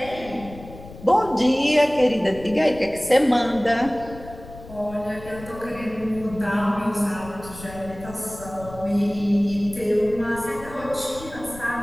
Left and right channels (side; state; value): left; noise; rumble, 16 dB below the sound